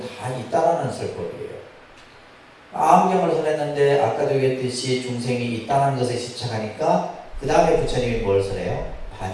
있다라는 설법이에요. 아함경을 설했는데 아까도 얘기했듯이 중생이 있다는 것에 집착하니까 그 다음에 부처님이 뭘 설해요?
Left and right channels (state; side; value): identical; both; correlation 1.00